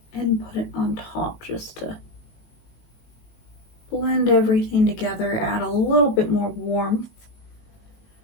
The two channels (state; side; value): late; right; 19 ms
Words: and put it on top just to blend everything together, add a little bit more warmth.